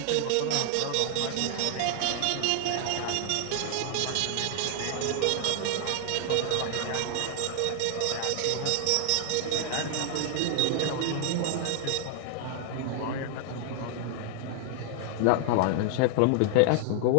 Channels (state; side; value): different; both; correlation 0.00